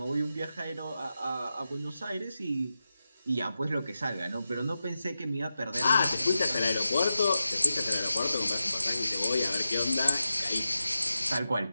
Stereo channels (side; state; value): both; inverted; correlation -0.91